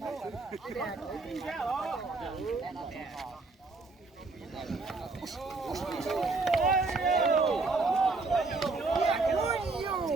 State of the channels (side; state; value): left; quieter; 3.7 dB